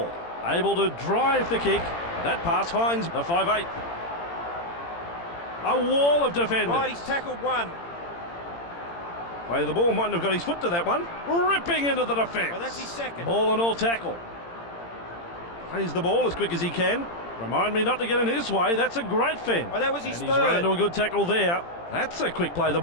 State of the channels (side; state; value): right; late; 17 ms